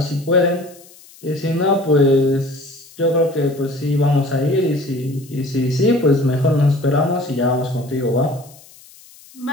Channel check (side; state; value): left; noise; hiss, 24 dB below the sound